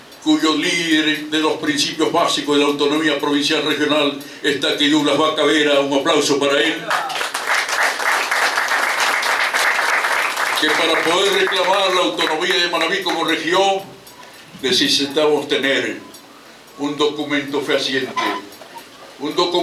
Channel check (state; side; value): identical; both; correlation 1.00